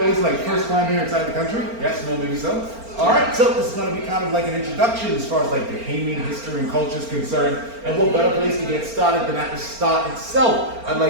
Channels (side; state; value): left; late; 4.4 ms